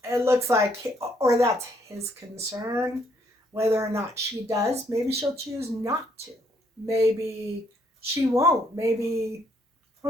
it looks like, or that's his concern. Whether or not she does, maybe she'll choose not to. Maybe she won't. Maybe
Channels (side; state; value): both; normal; correlation 0.69